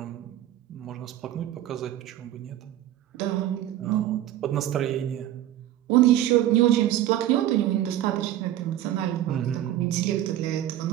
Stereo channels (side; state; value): left; quieter; 12.9 dB